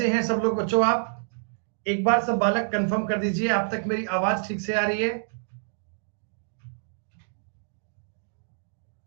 हैं सब लोग बच्चों? आप एक बार सब बालक कंफर्म कर दीजिए, आप तक मेरी आवाज ठीक से आ रही है?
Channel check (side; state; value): left; silent; digital silence